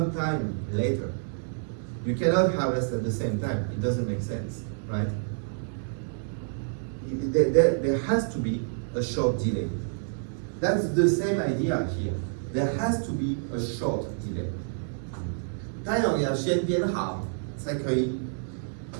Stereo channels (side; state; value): left; silent; 59 dB below the other